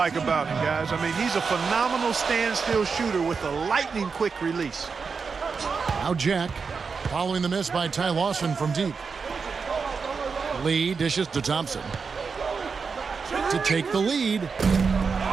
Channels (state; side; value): quieter; left; 5.2 dB